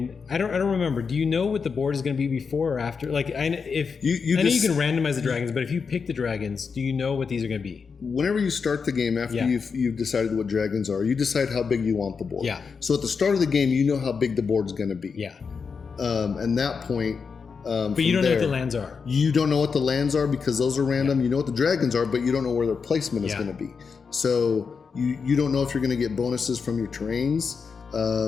I don't remember. Do you know what the board is going to be before or after? Like, I know you can randomize the dragons, but if you pick the dragons, do you know what these are going to be? Whenever you start the game, after you've decided what dragons are, you decide how big you want the board. Yeah. So at the start of the game, you know how big the board's going to be. Yeah. And that point. But you don't know what the lands are. You don't know what the lands are because those are random. Yeah. You know what the dragons are, but you don't know where their placement is going to be. So you don't know if you're going to get bonuses from your terrains.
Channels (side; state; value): right; quieter; 5.5 dB